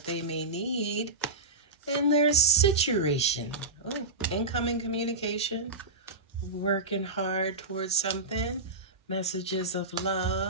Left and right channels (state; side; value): quieter; left; 3.2 dB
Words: they may need in their situation. Oh, incoming communication, working hard towards something, messages of